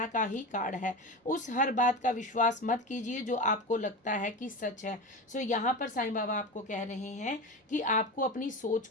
का ही कार्ड है। उस हर बात का विश्वास मत कीजिए जो आपको लगता है कि सच है। सो यहाँ पर साईं बाबा आपको कह रहे हैं कि आपको अपनी सोच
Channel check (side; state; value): both; normal; correlation 0.25